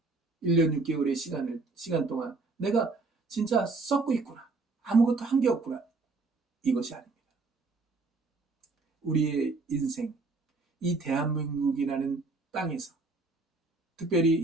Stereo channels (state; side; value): quieter; left; 3.7 dB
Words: 1년 6개월의 시간 동안 내가 진짜 썩고 있구나. 아무것도 한 게 없구나. 이것이 아닙니다. 우리의 인생, 이 대한민국이라는 땅에서 특별히